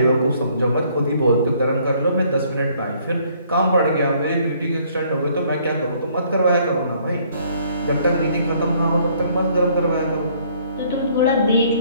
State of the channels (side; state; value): both; inverted; correlation -0.63